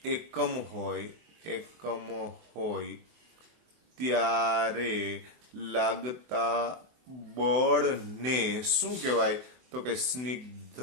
એકમ હોય ત્યારે લાગતા બળને શું કહેવાય? તો કે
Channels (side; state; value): left; late; 24 ms